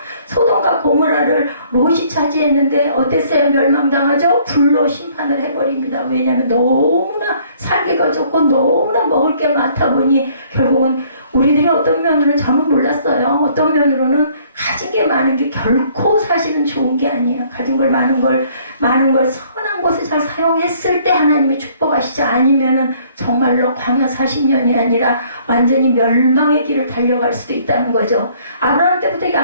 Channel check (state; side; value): inverted; both; correlation -0.61